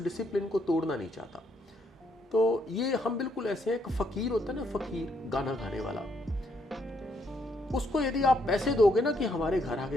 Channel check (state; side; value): normal; both; correlation 0.73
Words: को तोड़ना नहीं चाहता। तो ये हम बिल्कुल ऐसे हैं, एक फकीर होता है ना, फकीर गाना गाने वाला, उसको यदि आप पैसे दोगे ना कि हमारे घर